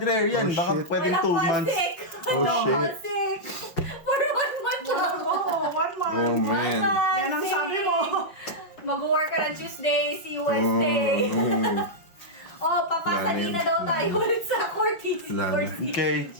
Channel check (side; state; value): right; late; 5.8 ms